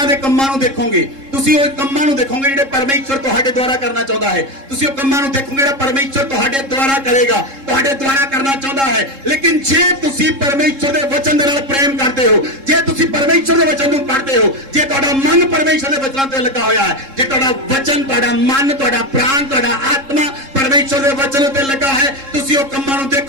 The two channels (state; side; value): late; left; 3.7 ms